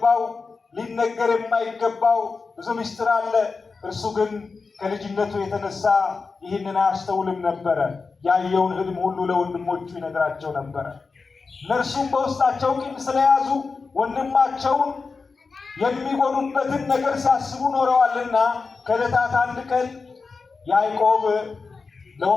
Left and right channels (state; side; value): quieter; right; 4.5 dB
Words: ሊነገር የማይገባው ብዙ ምስጢር አለ። እርሱ ግን ከልጅነቱ የተነሳ ይህንን አያስተውልም ነበረ። ያየውን ህልም ሁሉ ለወንድሞቹ ይነግራቸው ነበረ። እነርሱም በውስጣቸው ቂም ስለያዙ ወንድማቸውን የሚጎዱበትን ነገር ሲያስቡ ኖረዋልና ከዕለታት አንድ ቀን ያዕቆብ